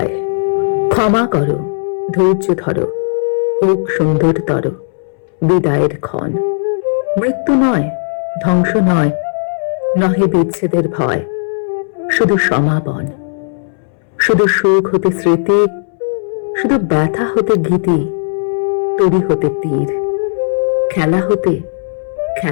ক্ষমা করো, ধৈর্য ধরো, হোক সুন্দরতর বিদায়ের ক্ষণ। মৃত্যু নয়, ধ্বংস নয়, নহে বিচ্ছেদের ভয়, শুধু সমাপন। শুধু সুখ হতে স্মৃতি, শুধু ব্যথা হতে গীতি, তরি হতে তীর, খেলা হতে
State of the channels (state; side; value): silent; right; 66 dB below the other